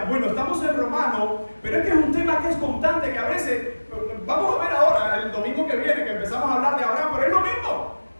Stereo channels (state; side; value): inverted; both; correlation -1.00